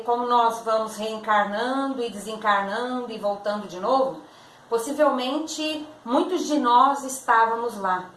como nós vamos reencarnando e desencarnando e voltando de novo, possivelmente muitos de nós estávamos lá.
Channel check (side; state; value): both; identical; correlation 1.00